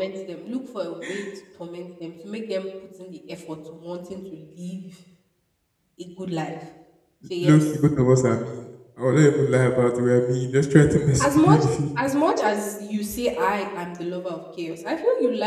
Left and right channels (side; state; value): both; identical; correlation 1.00